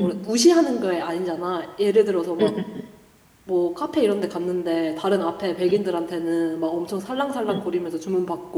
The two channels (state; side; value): identical; both; correlation 1.00